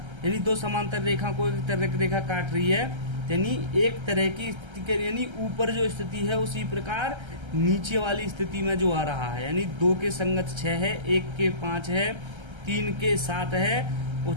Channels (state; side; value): late; left; 1.3 ms